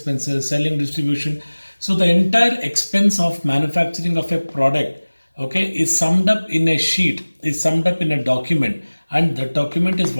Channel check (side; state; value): both; inverted; correlation -1.00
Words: selling, distribution. So the entire expense of manufacturing of a product, okay, is summed up in a sheet, is summed up in a document, and the document is